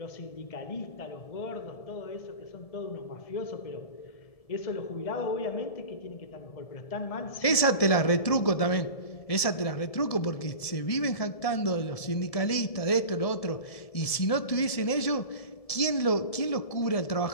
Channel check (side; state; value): right; late; 1.7 ms